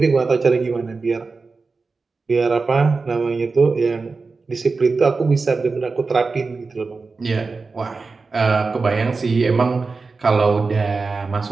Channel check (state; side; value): quieter; left; 4.2 dB